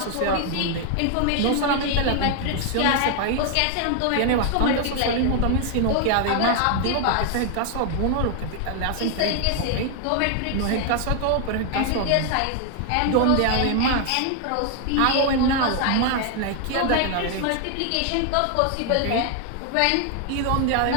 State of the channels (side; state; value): both; different; correlation 0.00